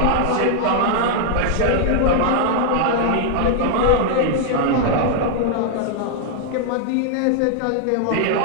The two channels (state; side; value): different; both; correlation 0.00